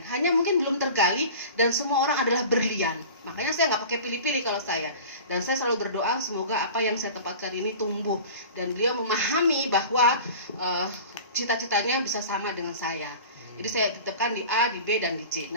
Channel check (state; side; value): inverted; both; correlation -0.38